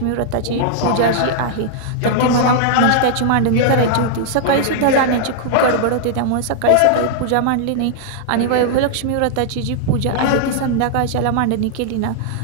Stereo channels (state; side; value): different; both; correlation -0.01